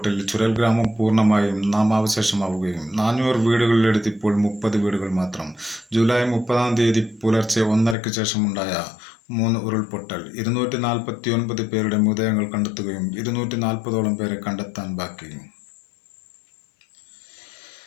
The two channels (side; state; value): right; drops out; at 8.0 s